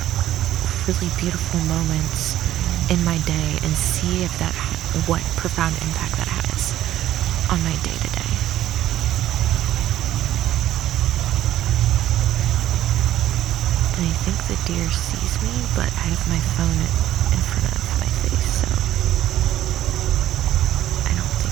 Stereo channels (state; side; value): quieter; left; 13.0 dB